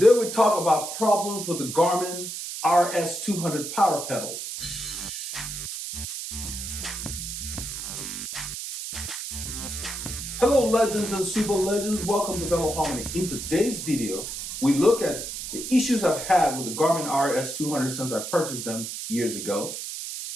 we talk about problems with the Garmin RS200 power pedals. Hello legends and super legends, welcome to Veloharmony. In today's video, we look at the issues I've had with the Garmin RS200 since I purchased them years ago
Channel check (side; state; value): right; noise; hiss, 6 dB below the sound